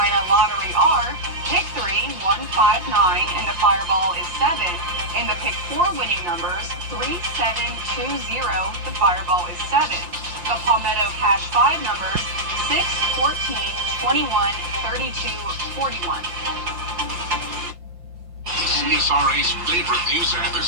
lottery are pick 3, 159, and the Fireball is 7. And the pick 4 winning numbers, 3720, the Fireball is 7. The Palmetto Cash 5 numbers, 6, 14, 21, 32, 41. The CSRA's favorite news app is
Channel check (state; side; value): late; left; 5.7 ms